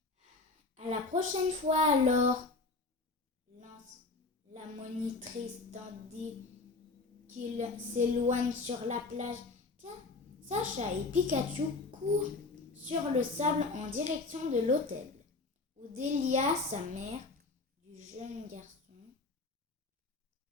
À la prochaine fois alors, lance la monitrice tandis qu'il s'éloigne sur la plage. Tiens, Sacha et Pikachu courent sur le sable en direction de l'hôtel, où Delia, sa mère, du jeune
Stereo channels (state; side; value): quieter; right; 3.6 dB